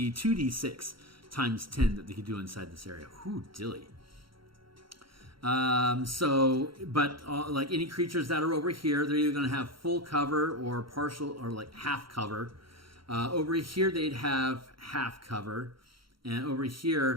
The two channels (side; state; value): left; late; 0.74 ms